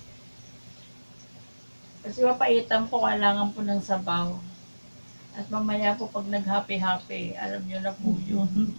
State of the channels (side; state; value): both; inverted; correlation -1.00